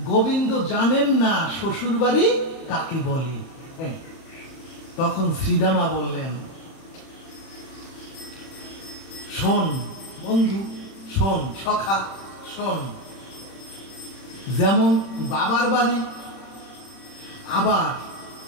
গোবিন্দ জানেন না শ্বশুর বাড়ি কাকে বলে। তখন শ্রীদামা বললেন, শোন বন্ধু, শোন সখা, শোন, যেমন বাবার বাড়ি, আবার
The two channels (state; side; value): late; right; 31 ms